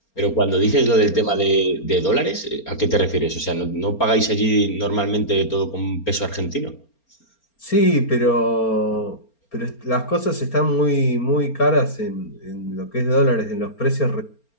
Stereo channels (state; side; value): late; right; 4.3 ms